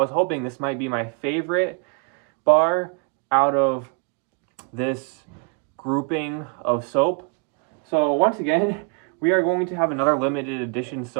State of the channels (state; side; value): quieter; left; 35.1 dB